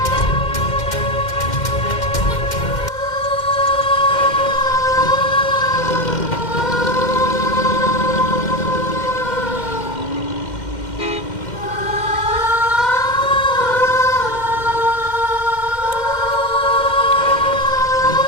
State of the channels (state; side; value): late; right; 2.1 ms